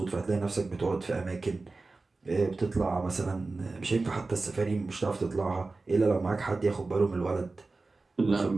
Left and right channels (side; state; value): left; quieter; 3.6 dB